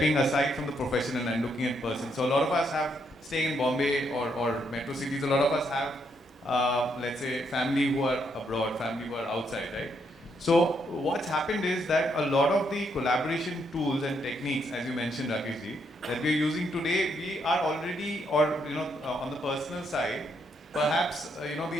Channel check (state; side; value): normal; both; correlation 0.76